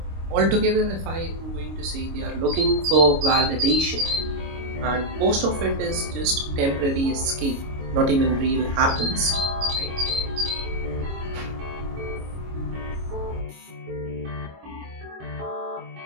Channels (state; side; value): late; left; 25 ms